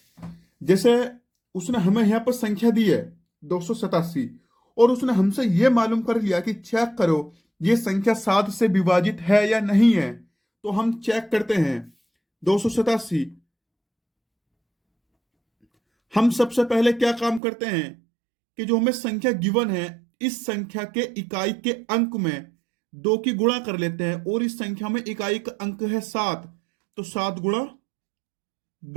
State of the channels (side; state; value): left; drops out; at 17.4 s